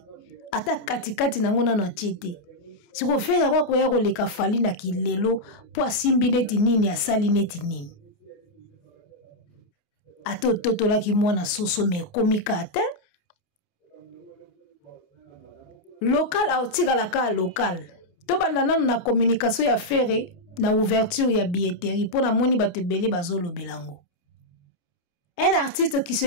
Ata katikati nango na tiete. Si vous faites quoi ko yako leka Fali na kilelo po simbi neti nini asali neti nini. Ato toto la ki mwana soso me komika ate. Local a otika la ka local. To banda nanu na communication ya Ferry na ouverture ya billetterie pour na moni bato belé bazolo belango. Un artiste qui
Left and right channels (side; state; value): right; late; 29 ms